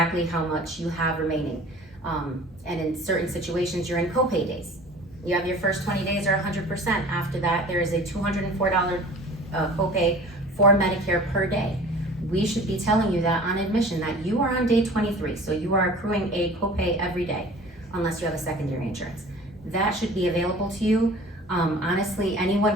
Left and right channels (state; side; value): normal; both; correlation 0.44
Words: how much you have remaining. And in certain situations, you're in copay days. You have your first 20 days are 100%. After that, there is a $204 copay for Medicare per day. We should be telling you that on admission, that you are on day 23, so you are accruing a copay every day, unless you have a secondary insurance. That should be available to you. Honestly,